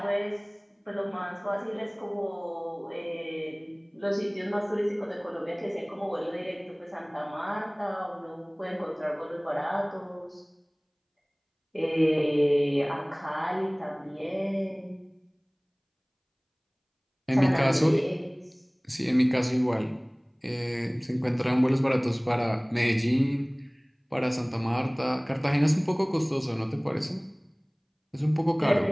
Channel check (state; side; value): identical; both; correlation 1.00